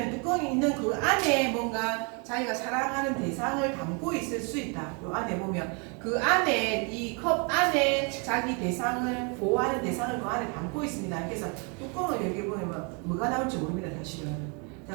뚜껑이 있는 그 안에 뭔가 자기가 사랑하는 대상을 담고 있을 수 있다. 요 안에 보면 그 안에 이 컵 안에 자기 대상을 보호하는 대상을 그 안에 담고 있습니다. 그래서 뚜껑을 열어보면 뭐가 나올지 모릅니다. 사실은.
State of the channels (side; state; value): left; quieter; 35.0 dB